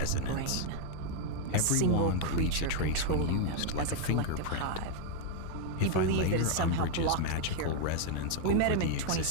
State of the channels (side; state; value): both; different; correlation 0.00